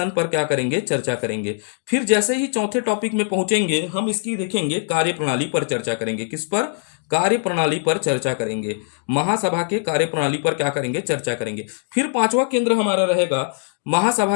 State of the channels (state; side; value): silent; right; 61 dB below the other